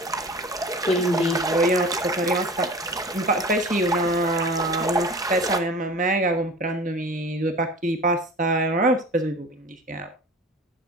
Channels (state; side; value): normal; both; correlation 0.38